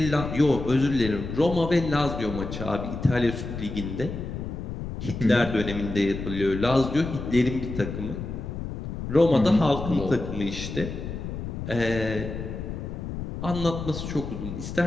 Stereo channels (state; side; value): noise; left; rumble, 7 dB below the sound